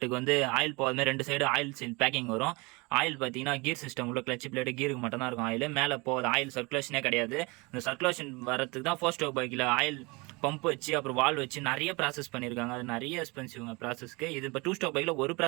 வந்து ஆயில் போகாத 2 சைடு ஆயில் சீல் பேக்கிங் வரும். ஆயில் பார்த்தீங்கன்னா கீர் சிஸ்டம் உள்ள கிளச் பிளேட்டு கீருக்கு மட்டும் தான் இருக்கும் ஆயில், மேலே போகாது. ஆயில் சர்க்குலேஷனே கிடையாது. இந்த சர்க்குலேஷன் வரதுக்கு தான் 4 ஸ்ட்ரோக் பைக்கில் ஆயில் பம்ப் வச்சு அப்புறம் வால் வச்சு நிறைய ப்ராசஸ் பண்ணியிருக்காங்க. அது நிறைய எக்ஸ்பென்சிவ்ங்க ப்ராசஸ்க்கு. இது இப்போ 2 ஸ்ட்ரோக் பைக்கில் ஒரு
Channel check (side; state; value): left; quieter; 26.5 dB